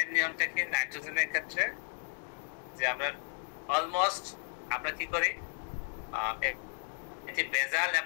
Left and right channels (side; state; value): right; silent; 55 dB below the other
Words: নিয়মটা কি নাইট্রোজেনের ক্ষেত্রে, যে আমরা অলমোস্ট আমরা কি করি, এটি বেজাল